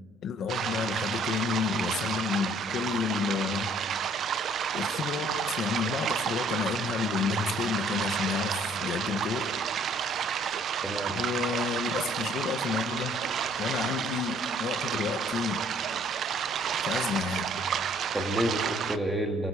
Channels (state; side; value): normal; both; correlation 0.61